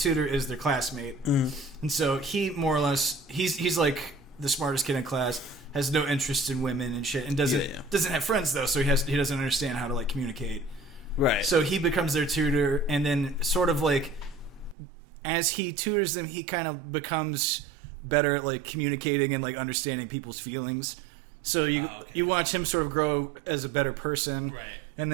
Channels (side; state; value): left; drops out; at 14.8 s